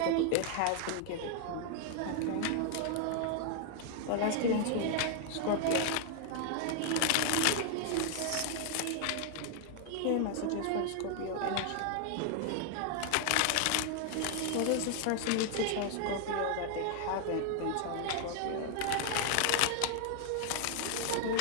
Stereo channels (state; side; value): different; both; correlation 0.00